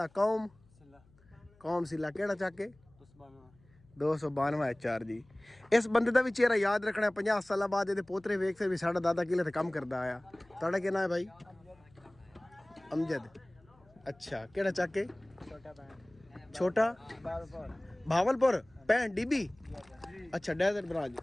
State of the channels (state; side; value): noise; left; hum, 30 dB below the sound